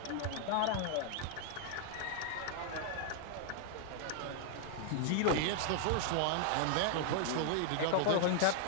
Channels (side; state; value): both; different; correlation 0.00